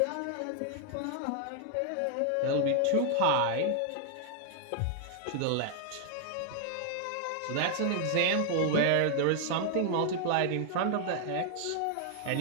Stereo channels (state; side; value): different; both; correlation 0.00